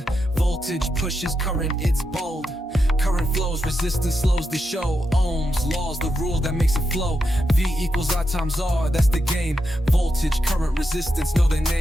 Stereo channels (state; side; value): normal; both; correlation 0.86